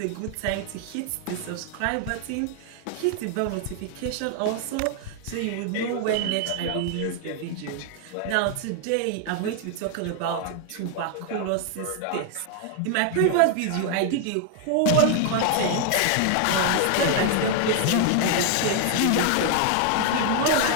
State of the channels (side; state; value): both; different; correlation 0.00